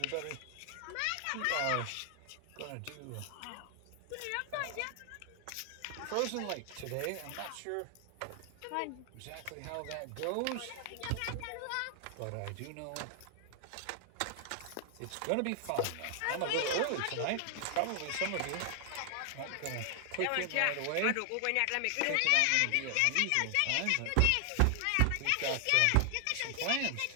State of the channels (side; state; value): both; different; correlation 0.00